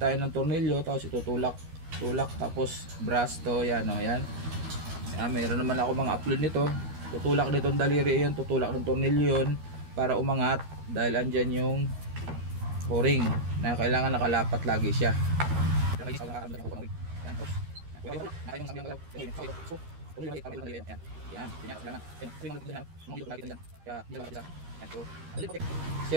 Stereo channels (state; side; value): late; left; 13 ms